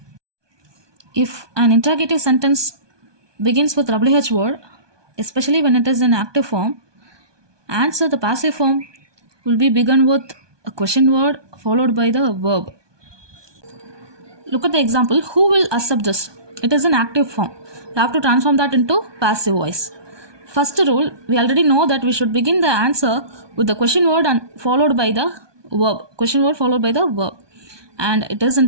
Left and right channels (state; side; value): late; left; 1.2 ms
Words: If an interrogative sentence begins with WH word, especially when it is in active form, answer the passive form will be begun with a question word followed by the verb. Look at the example. Who will accept this? It is an active form. You have to transform that into passive voice. First rule, we already know that we should begin the answer with the question word and followed by the verb. Question word followed by the verb. And it is